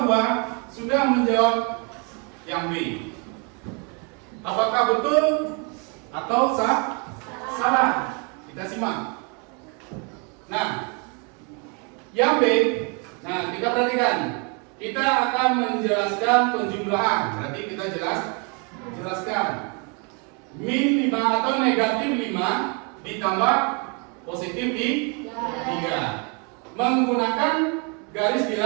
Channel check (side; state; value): left; quieter; 34.3 dB